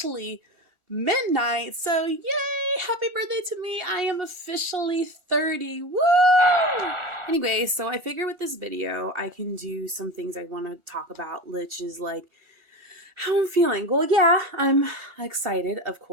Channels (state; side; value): late; right; 1.4 ms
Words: midnight, so yay! Happy birthday to me! I am officially 30. Woo! Anyway, so I figure with this video, I can do some things I want to talk about, which is like how I'm feeling. Well, yeah, I'm excited, of